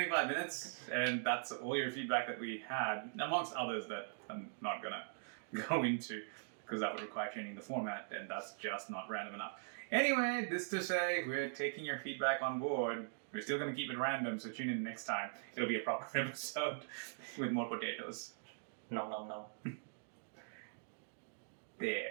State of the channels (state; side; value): silent; left; digital silence